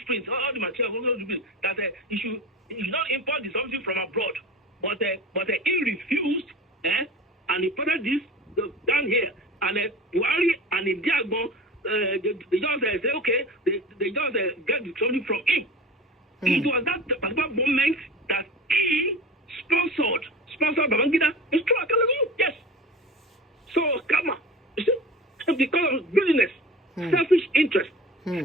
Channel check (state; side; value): normal; both; correlation 0.34